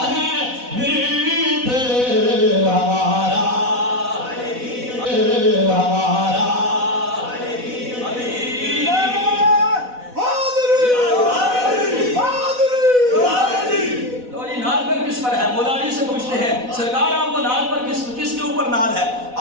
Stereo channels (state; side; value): late; left; 4.0 ms